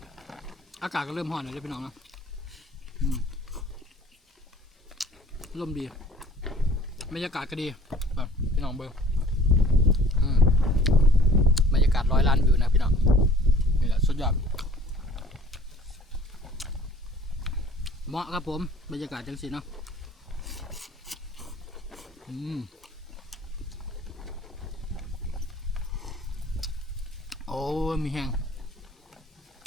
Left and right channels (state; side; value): normal; both; correlation 0.49